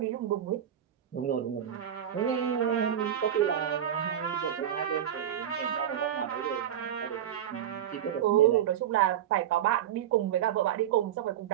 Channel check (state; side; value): quieter; left; 10.2 dB